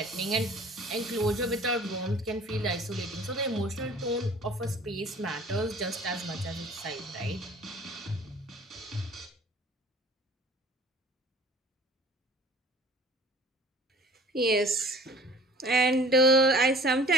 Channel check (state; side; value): normal; both; correlation 0.48